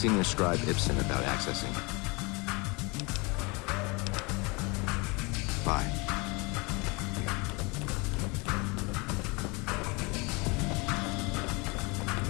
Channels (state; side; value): quieter; right; 27.6 dB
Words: Scribe Ibsen about accessing. Bye.